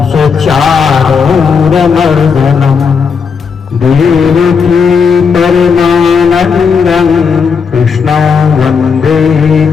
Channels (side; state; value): right; quieter; 5.9 dB